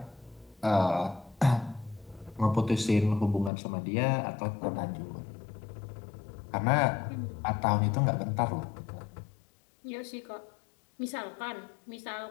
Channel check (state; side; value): drops out; right; at 3.5 s